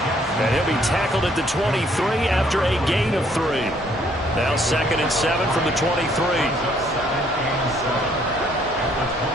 And he'll be tackled at the 23 after a gain of 3. Now 2nd and 7 from the 23.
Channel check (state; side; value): normal; both; correlation 0.65